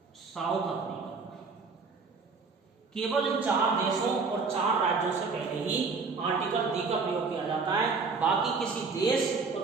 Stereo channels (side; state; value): left; quieter; 4.6 dB